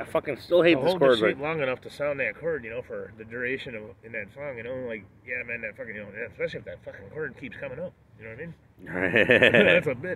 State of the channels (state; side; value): identical; both; correlation 1.00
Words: fucking still hate this chord. Hold long enough to sound that chord, you know, for the duration of in that song, you know, like yeah, man, that fucking, you know, especially if that fucking chord keeps coming up, you know what I mean? That's a